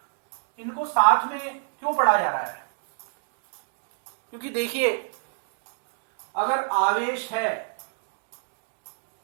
इनको साथ में क्यों पढ़ा जा रहा है? क्योंकि देखिए, अगर आवेश है,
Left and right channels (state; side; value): silent; left; digital silence